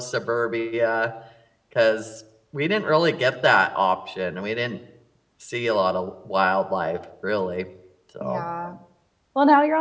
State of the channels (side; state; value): both; identical; correlation 1.00